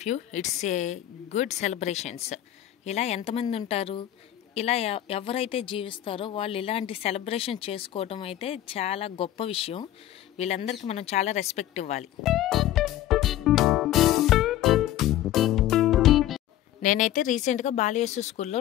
view it's a good celebrations. ఇలా ఎంతమంది ఉంటారు, ఇలా ఎవరైతే జీవిస్తారో వాళ్ళు ఇలాంటి సెలబ్రేషన్ చేసుకోవడం అయితే చాలా గొప్ప విషయం. వీళ్ళందరికీ మనం చాలా రెస్పెక్ట్ ఇవ్వాలి. నేనైతే రీసెంట్గా బాలయేసు స్కూల్లో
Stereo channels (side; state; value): right; quieter; 12.8 dB